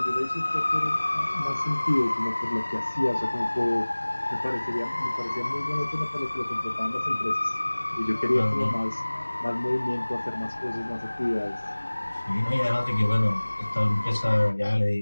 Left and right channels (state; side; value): inverted; both; correlation -1.00